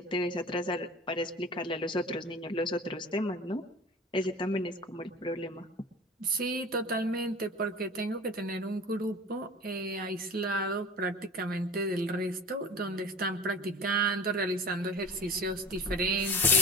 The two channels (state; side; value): normal; both; correlation 0.40